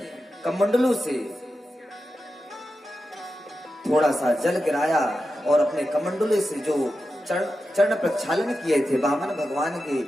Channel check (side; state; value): both; normal; correlation 0.91